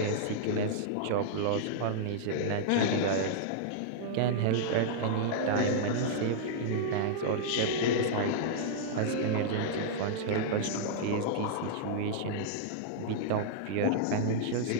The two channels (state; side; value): different; both; correlation -0.02